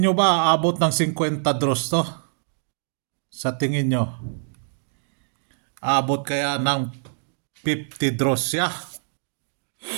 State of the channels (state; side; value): silent; left; digital silence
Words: ba abot ng 50 draws to? Sa tingin nyo? Abot kaya ng 50 draws siya?